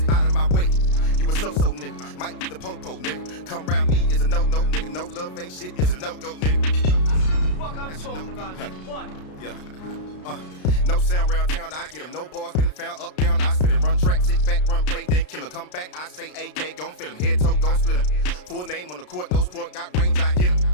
Out of my way. You a so-so nigga. Might be the po-po nigga. Come round me is a no-no nigga. No love, ain't shit is a no-go nigga. Fuck I'm talking about, nigga. What? Yeah. No sound round town, I get 'em. No bars been found up, down, I spit 'em. Run track, sit back, run play, then kill 'em. Come back, I say AK, gon' fill 'em. Head, toe, gon' split 'em. Full name on the court, no sport, got range, I hit 'em.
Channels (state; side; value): late; right; 33 ms